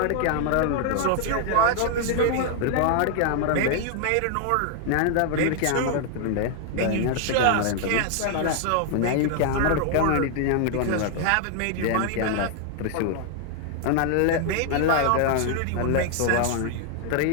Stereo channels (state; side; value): different; both; correlation 0.00